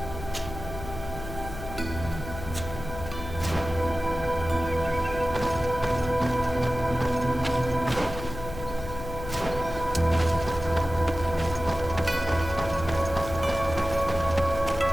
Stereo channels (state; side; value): noise; left; hum, 10 dB below the sound